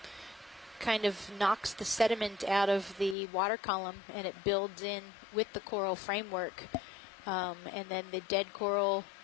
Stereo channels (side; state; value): right; drops out; at 3.2 s